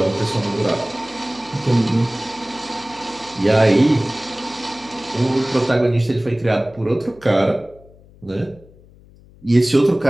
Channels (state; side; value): noise; left; hum, 25 dB below the sound